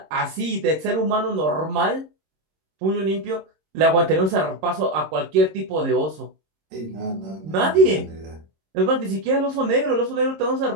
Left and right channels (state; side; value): late; left; 26 ms